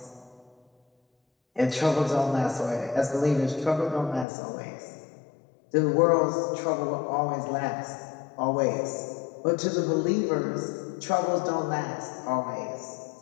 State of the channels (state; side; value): drops out; right; at 4.2 s